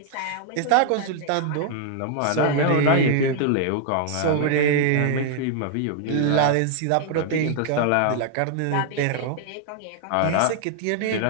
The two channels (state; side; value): different; both; correlation 0.00